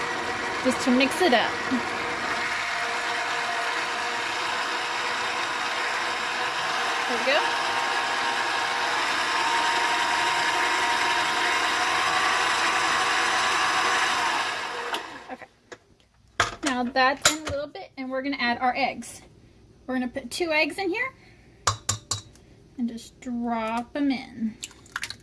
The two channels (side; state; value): both; identical; correlation 1.00